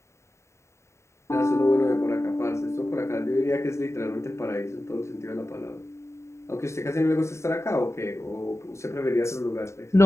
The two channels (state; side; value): late; right; 0.14 ms